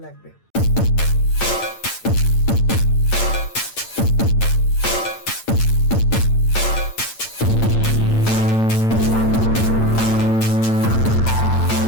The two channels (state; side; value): late; right; 8.9 ms